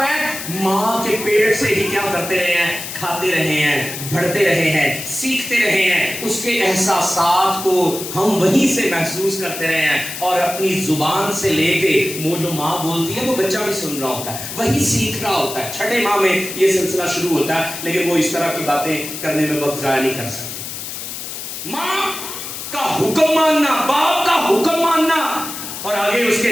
है, माँ के पेट से ही क्या करते रहे हैं, खाते रहे हैं, बढ़ते रहे हैं, सीखते रहे हैं, उसके एहसासात को हम वहीं से महसूस करते रहे हैं और अपनी जुबान से लेके वो जो माँ बोलती है वो बच्चा भी सुन रहा होता है, वही सीख रहा होता है। छठे माह में ये सिलसिला शुरू होता है, लेकिन वो इस तरह की बातें करने में वक्त जाया नहीं कर सकते। माँ का हुक्म मानना, बाप का हुक्म मानना, और आगे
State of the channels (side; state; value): left; noise; hiss, 8 dB below the sound